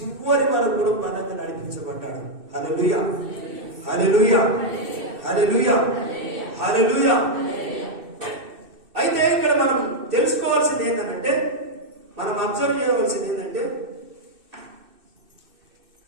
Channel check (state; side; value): late; left; 2.6 ms